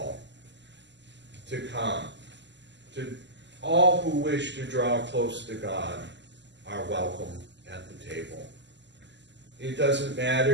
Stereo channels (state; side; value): late; left; 0.52 ms